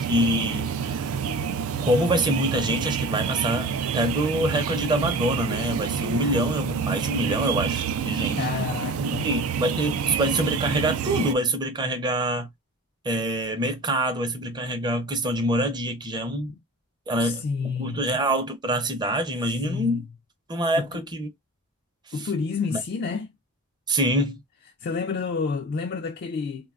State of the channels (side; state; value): both; normal; correlation 0.37